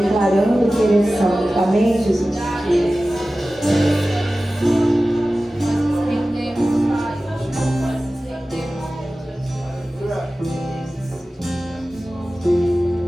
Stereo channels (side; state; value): both; normal; correlation 0.96